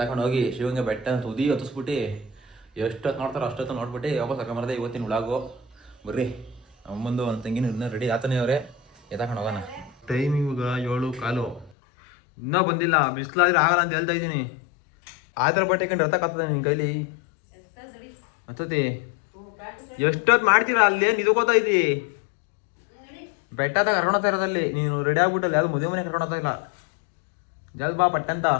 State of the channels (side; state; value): right; drops out; at 11.7 s